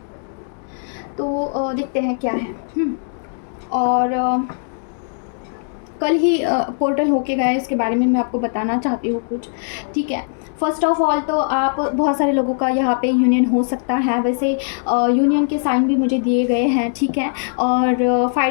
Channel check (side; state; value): right; silent; digital silence